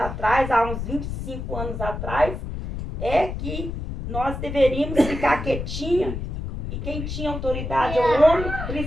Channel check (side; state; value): left; noise; rumble, 6 dB below the sound